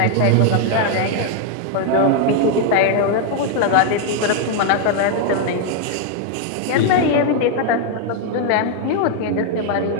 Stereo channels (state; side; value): different; both; correlation 0.00